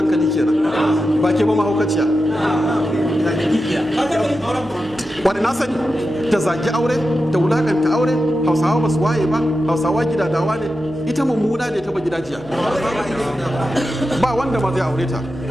kenan ba ke ba mahaukaciya wani na sani ta zagi aure ta wulakanta aure hausawa ba su waye ba hausawa gidadawa ne ita mummuna ne ta ba gidajiya ba wanda ma zai aure ta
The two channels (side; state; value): left; noise; hum, 25 dB below the sound